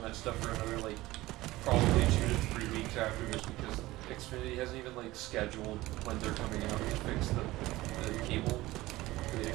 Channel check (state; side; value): quieter; left; 18.2 dB